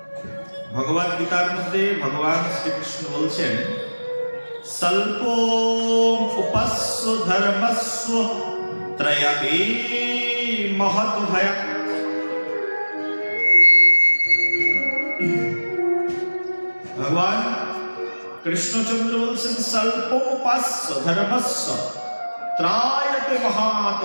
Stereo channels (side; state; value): both; inverted; correlation -1.00